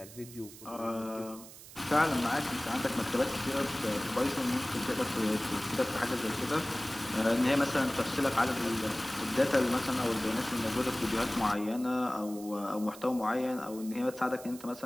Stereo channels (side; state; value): right; noise; hiss, 17 dB below the sound